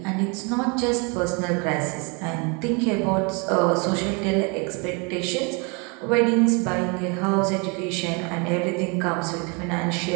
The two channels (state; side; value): quieter; left; 32.0 dB